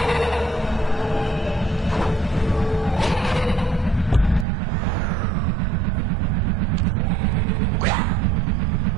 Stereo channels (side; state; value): left; drops out; at 4.5 s